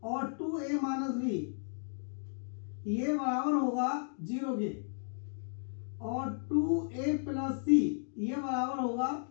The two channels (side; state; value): right; silent; digital silence